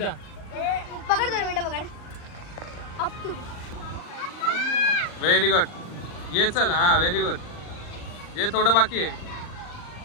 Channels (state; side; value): late; right; 39 ms